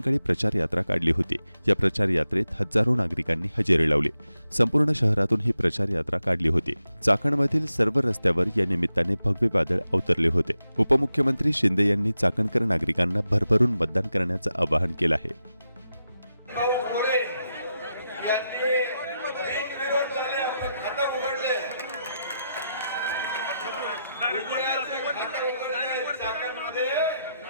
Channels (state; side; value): inverted; both; correlation -0.87